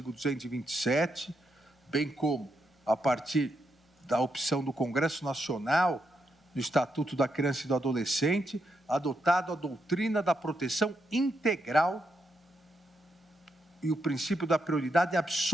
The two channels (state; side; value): normal; both; correlation 0.81